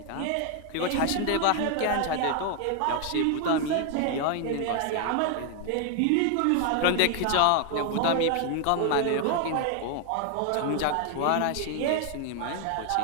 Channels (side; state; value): both; different; correlation 0.00